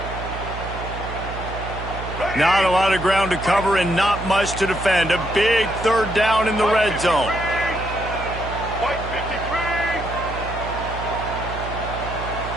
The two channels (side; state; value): right; noise; hum, 8 dB below the sound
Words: Not a lot of ground to cover and not much to defend. A big 3rd down in the red zone.